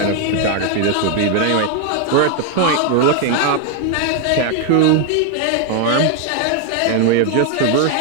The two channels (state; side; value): different; both; correlation 0.01